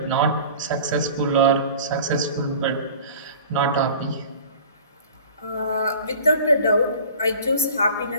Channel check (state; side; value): inverted; both; correlation -0.42